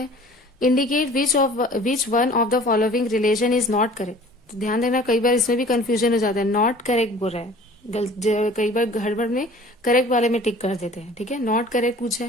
indicate which one of the following relation is not correct. तो ध्यान देना, कई बार इसमें भी कंफ्यूजन हो जाता है, नॉट करेक्ट बोल रहा है, कई बार गड़बड़ में करेक्ट वाले में टिक कर देते हैं, ठीक है, नॉट करेक्ट पूछा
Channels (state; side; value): normal; both; correlation 0.47